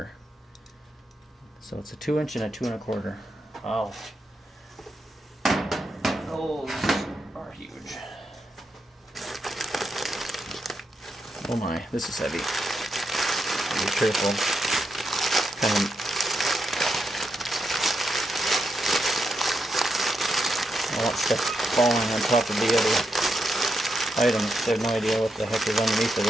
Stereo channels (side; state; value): both; normal; correlation 0.84